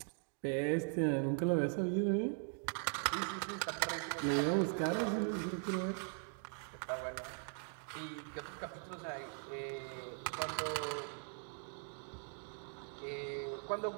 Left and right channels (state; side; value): silent; left; 51 dB below the other